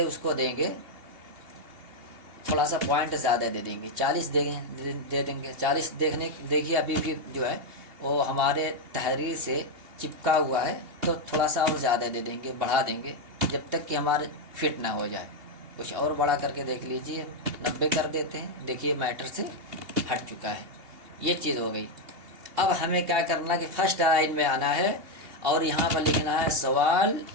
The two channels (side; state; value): left; late; 2.8 ms